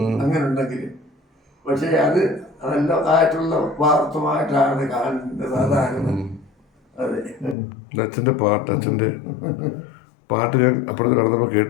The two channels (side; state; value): right; drops out; at 7.6 s